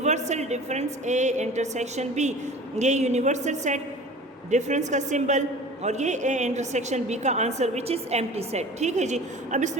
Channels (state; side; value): normal; both; correlation 0.41